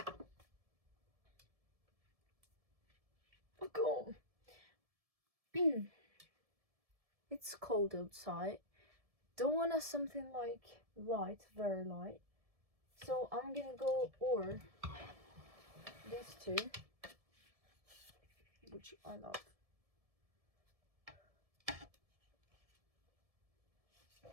Oh god. It's cold outside. Don't want something like light, very light. So I'm gonna go or these two, which I love.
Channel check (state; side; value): late; left; 1.7 ms